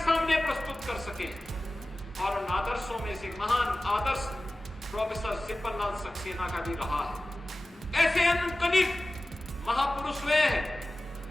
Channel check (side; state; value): both; normal; correlation 0.96